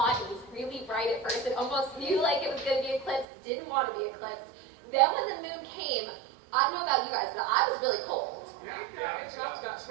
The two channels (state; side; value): drops out; left; at 3.2 s